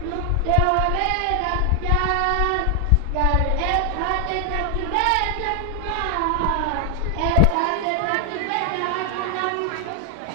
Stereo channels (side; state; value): both; different; correlation 0.00